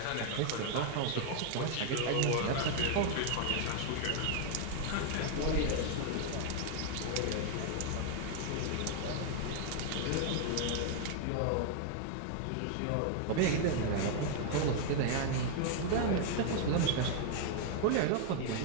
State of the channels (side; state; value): both; different; correlation 0.00